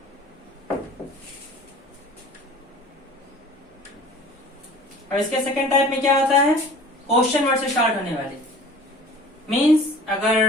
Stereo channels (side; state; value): both; normal; correlation 0.45